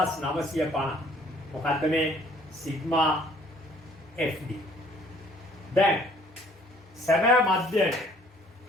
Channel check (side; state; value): both; normal; correlation 0.59